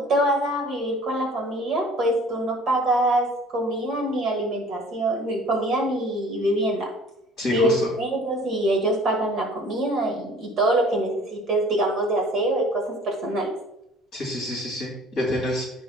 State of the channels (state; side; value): normal; both; correlation 0.50